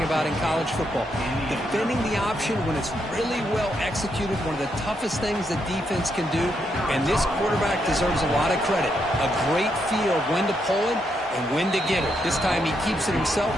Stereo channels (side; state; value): both; normal; correlation 0.79